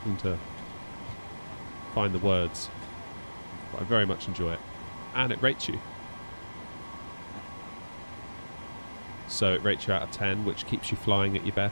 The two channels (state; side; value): inverted; both; correlation -1.00